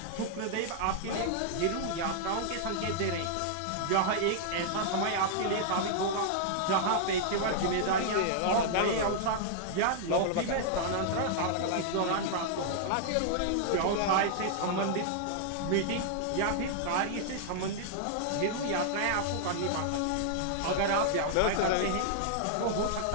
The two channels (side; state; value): both; different; correlation -0.01